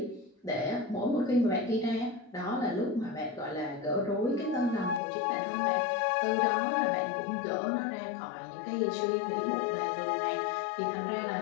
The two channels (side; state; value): right; drops out; at 5.0 s